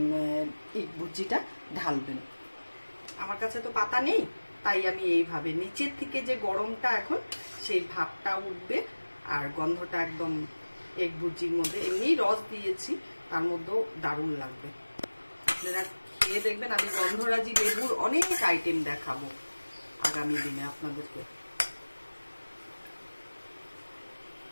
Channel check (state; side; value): inverted; both; correlation -1.00